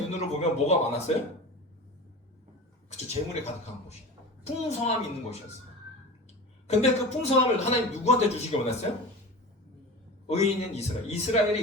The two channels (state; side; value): normal; both; correlation 0.32